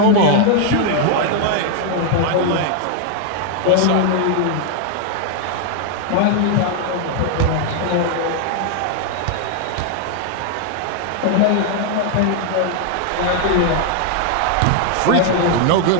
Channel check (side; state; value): both; different; correlation 0.00